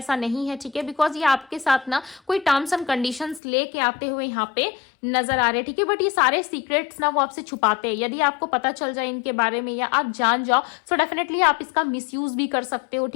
नहीं है, ठीक है। बिकॉज ये आपके साथ ना कोई टर्म्स एंड कंडीशंस लेके आते हुए यहाँ पे नजर आ रहे हैं, ठीक है। बट ये सारे सीक्रेट्स ना वो आपसे छुपाते हैं। यदि आपको पता चल जाए इनके बारे में या आप जान जाओ, सो डेफिनेटली आप इसका मिसयूज भी कर सकते हो,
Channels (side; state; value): right; drops out; at 3.4 s